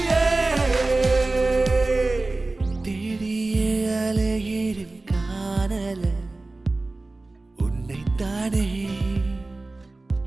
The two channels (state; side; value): quieter; left; 3.2 dB